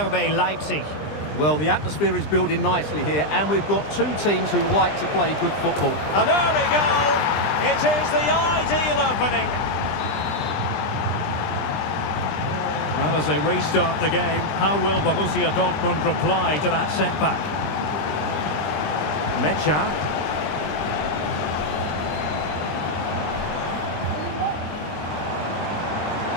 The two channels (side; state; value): right; late; 20 ms